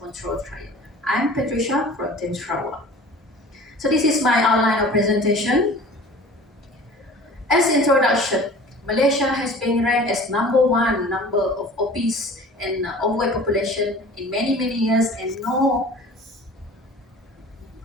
trial. I'm Patricia from Team Sarawak. So this is my outline of presentation. As introduction, Malaysia has been ranked as number one number of obese and overweight population in many years, and no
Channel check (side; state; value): both; normal; correlation 0.43